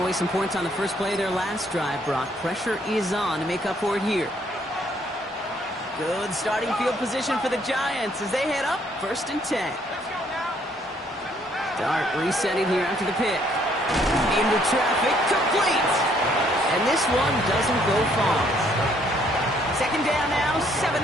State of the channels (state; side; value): normal; both; correlation 0.66